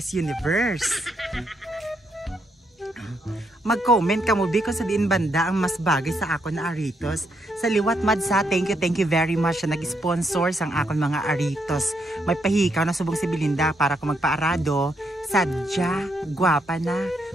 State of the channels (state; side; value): normal; both; correlation 0.77